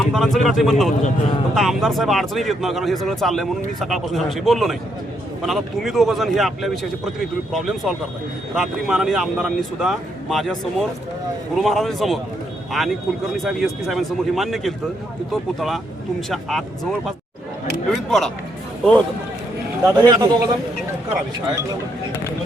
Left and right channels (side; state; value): both; normal; correlation 0.76